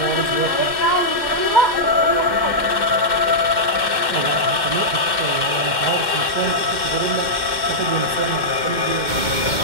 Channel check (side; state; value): left; late; 2.1 ms